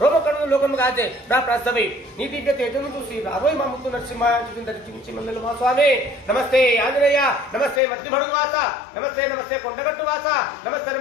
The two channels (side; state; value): right; drops out; at 7.8 s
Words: రోమకణులు లోకము కాచే నా ప్రసవి నీ దివ్య తేజను చూసి రాబోయ్ మా ముత్తు నరసింహ చించి మందలు మా స్వామి నమస్తే ఆంజనేయ నమస్తే మధ్యమడుగు వాస నమస్తే నమస్తే కొండగట్టు వాస నమస్తే